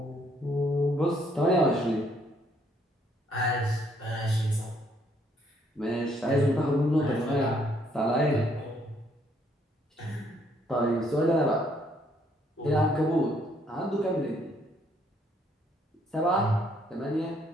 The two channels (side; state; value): both; normal; correlation 0.68